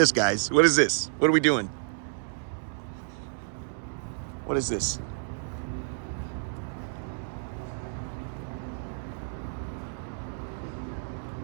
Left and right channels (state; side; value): silent; left; 58 dB below the other